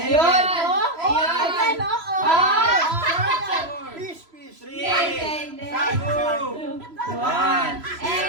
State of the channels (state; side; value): late; left; 3.0 ms